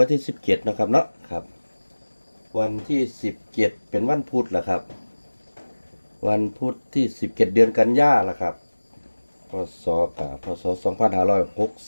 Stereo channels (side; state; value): both; inverted; correlation -1.00